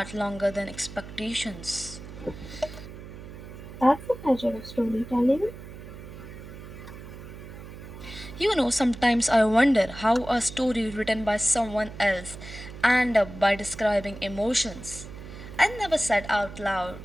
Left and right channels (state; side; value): noise; right; hum, 14 dB below the sound